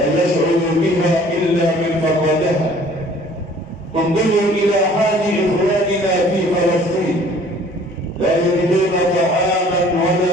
يشعر بها إلا من فقدها. انظروا إلى حال إخواننا في فلسطين، لا يجدون طعاما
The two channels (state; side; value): normal; both; correlation 0.53